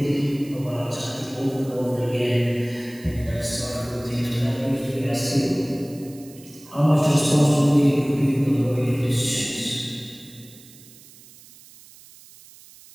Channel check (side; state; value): right; noise; hiss, 22 dB below the sound